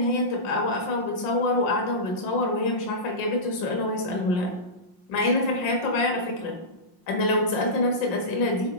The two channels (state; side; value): late; right; 5.6 ms